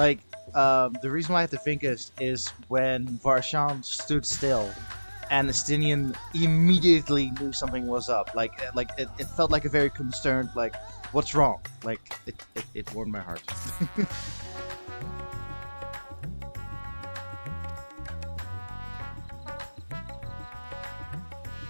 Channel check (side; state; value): both; inverted; correlation -1.00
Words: the reason why I have to think is when Varshan stood still, and Astinian immediately knew something was up. Like it felt like a very concerned, like, what's wrong? Like, it warmed my heart.